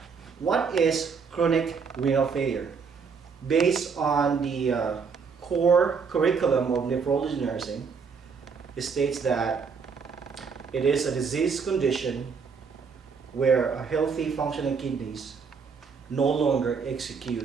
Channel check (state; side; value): quieter; left; 5.6 dB